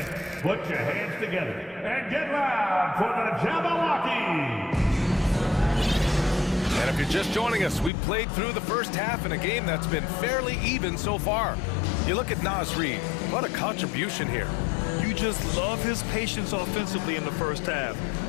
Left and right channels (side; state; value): right; drops out; at 7.9 s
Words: put your hands together and get loud for the Jabberwocky. And if you're just joining us, we've played through the first half in a game that's been fairly even so far. You look at Nas Reed, what a contribution here. You just love his patience offensively in the first half.